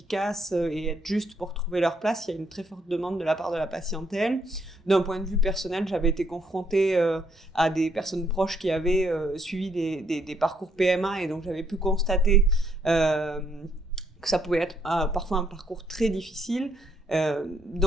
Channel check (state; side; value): normal; both; correlation 0.71